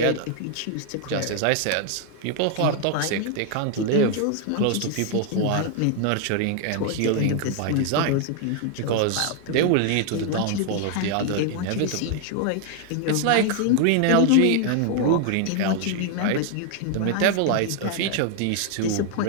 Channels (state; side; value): different; both; correlation 0.00